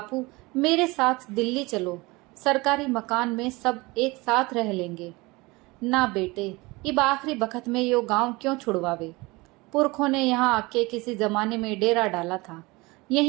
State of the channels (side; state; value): left; quieter; 23.4 dB